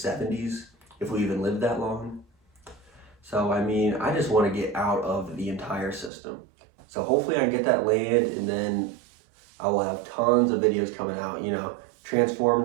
if we even live that long. So, I just want to get out of the entire system. So hopefully I can get that land, and then I will have tons of videos coming out, you know,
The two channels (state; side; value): drops out; left; at 6.1 s